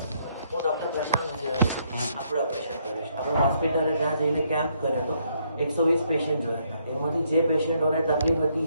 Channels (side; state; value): both; inverted; correlation -0.72